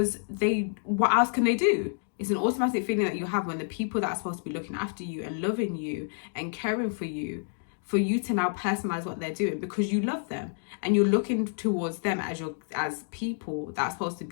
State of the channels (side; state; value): right; silent; digital silence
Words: what else can they do? It's an automatic feeling that you have when the people that are supposed to be looking after you and loving you and caring for you to now personalize what they're doing because you love them and you're looking towards them as people that are supposed to